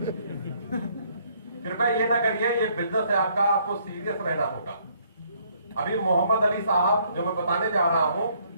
कृपया ये ना करिए, ये बिजनेस है आपका, आपको सीरियस रहना होगा। अभी मोहम्मद अली साहब जो मैं बताने जा रहा हूं,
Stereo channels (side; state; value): both; inverted; correlation -0.66